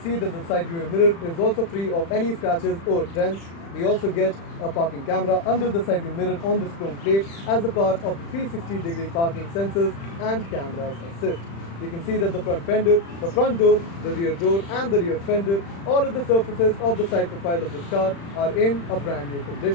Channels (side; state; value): right; late; 35 ms